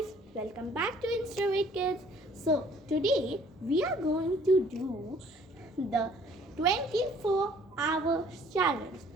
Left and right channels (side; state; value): both; normal; correlation 0.57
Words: welcome back to Insta Kids. So today we are going to do the 24 hours challenge.